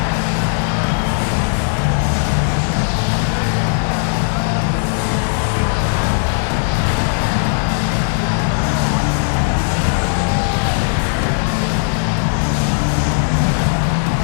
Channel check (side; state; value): right; silent; digital silence